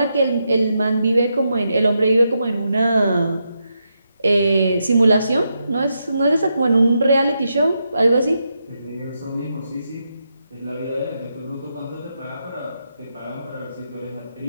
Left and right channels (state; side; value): inverted; both; correlation -0.83